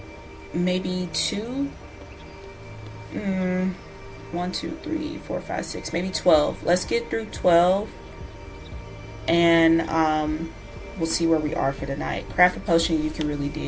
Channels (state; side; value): identical; both; correlation 1.00